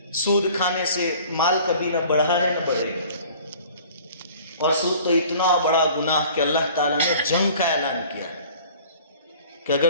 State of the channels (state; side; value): inverted; both; correlation -0.48